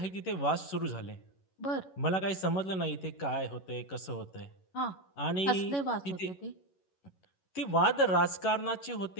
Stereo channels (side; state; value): right; late; 11 ms